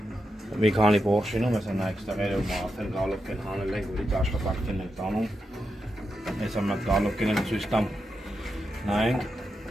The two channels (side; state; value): both; normal; correlation 0.86